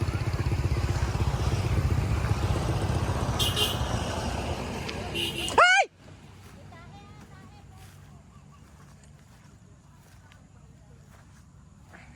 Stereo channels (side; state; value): both; identical; correlation 1.00